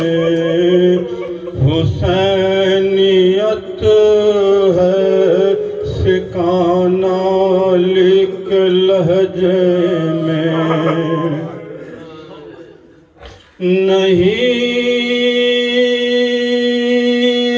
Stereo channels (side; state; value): both; identical; correlation 1.00